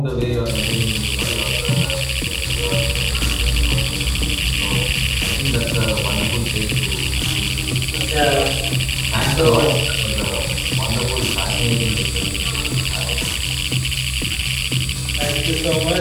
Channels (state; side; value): identical; both; correlation 1.00